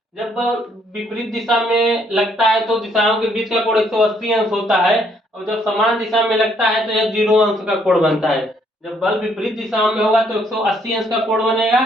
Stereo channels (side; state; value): both; normal; correlation 0.68